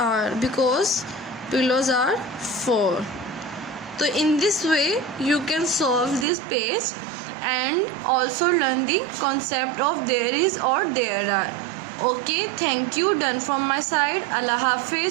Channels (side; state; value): left; drops out; at 6.2 s